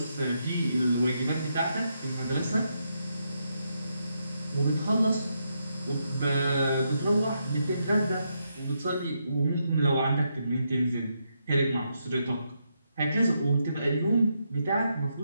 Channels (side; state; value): both; inverted; correlation -0.81